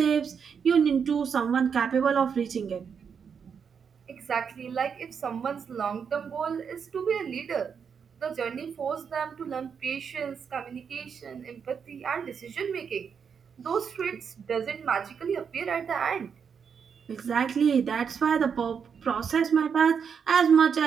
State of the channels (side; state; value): left; quieter; 6.7 dB